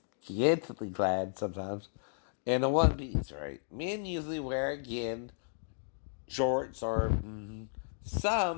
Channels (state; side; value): silent; right; digital silence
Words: scantily clad sometimes, and a one-piece, right? Men usually wear, again, shorts, or